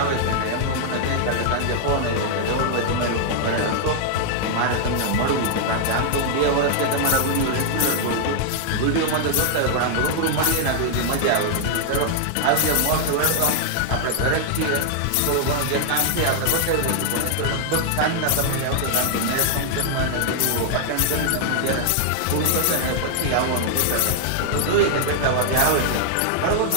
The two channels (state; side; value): different; both; correlation -0.01